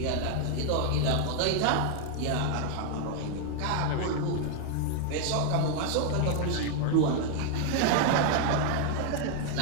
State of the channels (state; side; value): different; both; correlation 0.00